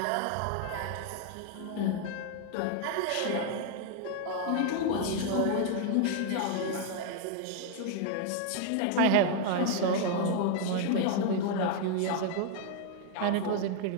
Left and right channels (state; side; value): different; both; correlation 0.00